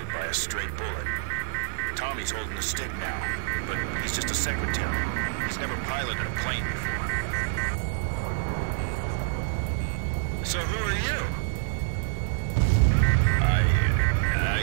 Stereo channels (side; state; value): left; silent; digital silence